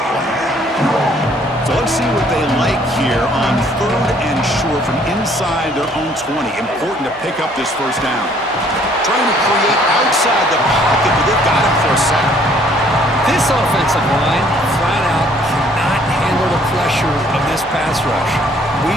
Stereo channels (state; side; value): normal; both; correlation 0.61